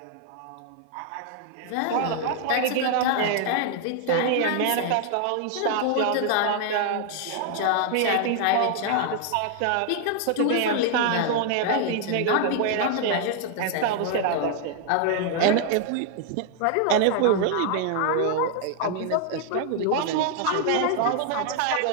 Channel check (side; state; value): both; different; correlation 0.00